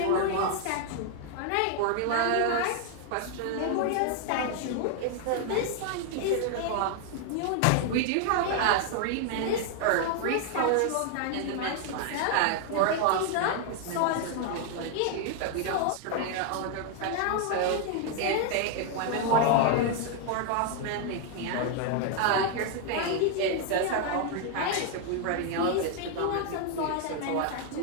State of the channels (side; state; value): both; different; correlation 0.00